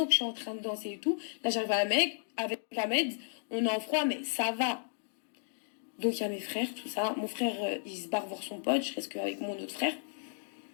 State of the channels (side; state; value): right; silent; digital silence